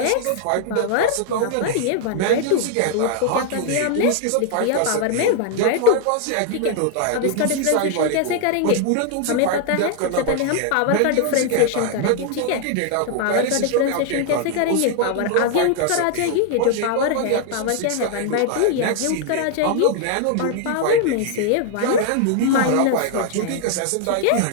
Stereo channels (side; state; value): both; different; correlation 0.00